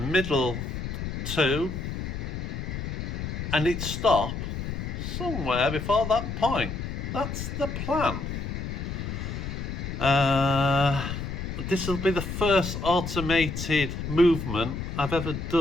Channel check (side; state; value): left; noise; rumble, 5 dB below the sound